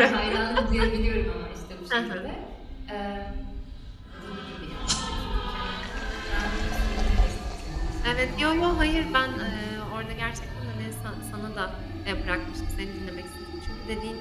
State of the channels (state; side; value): identical; both; correlation 1.00